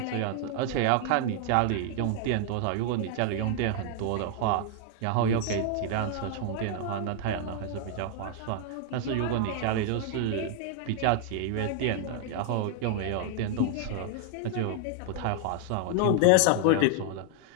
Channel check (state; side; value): different; both; correlation 0.00